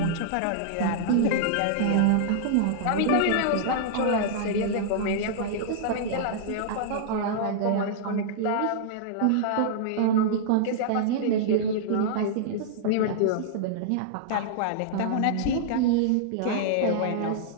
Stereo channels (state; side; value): different; both; correlation -0.02